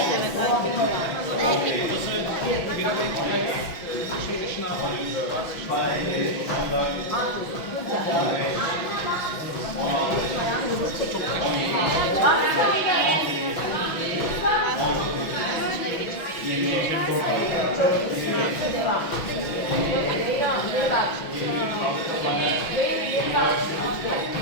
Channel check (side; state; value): right; late; 6.0 ms